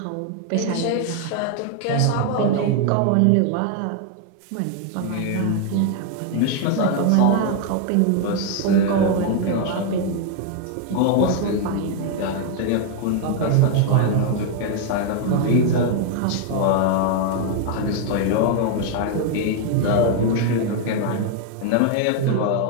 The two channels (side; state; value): both; different; correlation 0.00